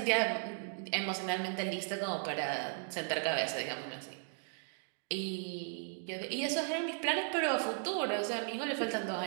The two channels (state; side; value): silent; left; 54 dB below the other